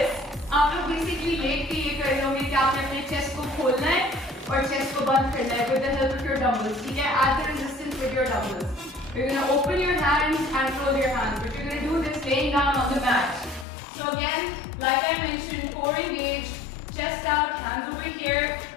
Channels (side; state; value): right; drops out; at 13.7 s